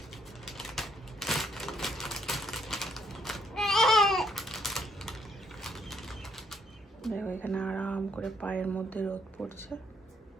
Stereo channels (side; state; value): both; normal; correlation 0.70